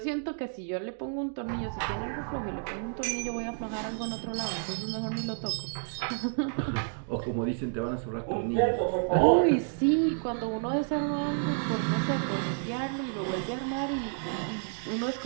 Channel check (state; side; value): silent; left; 58 dB below the other